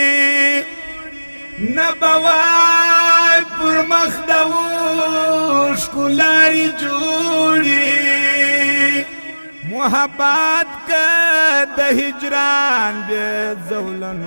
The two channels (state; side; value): inverted; both; correlation -1.00